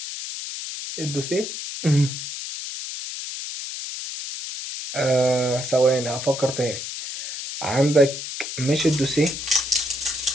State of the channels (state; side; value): noise; left; hiss, 7 dB below the sound